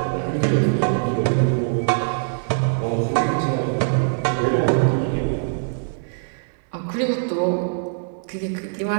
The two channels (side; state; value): left; silent; digital silence